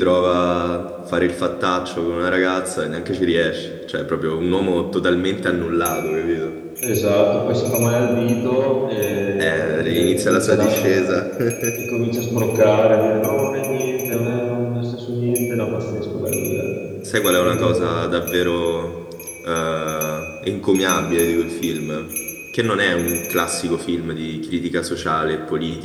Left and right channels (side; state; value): both; identical; correlation 1.00